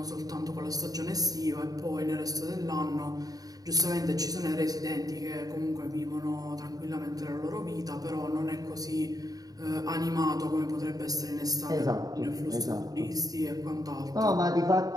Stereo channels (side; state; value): left; late; 0.18 ms